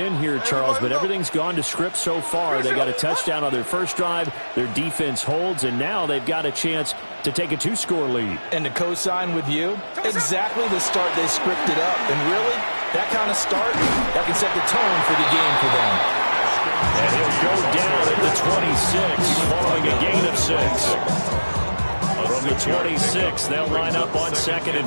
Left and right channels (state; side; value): inverted; both; correlation -1.00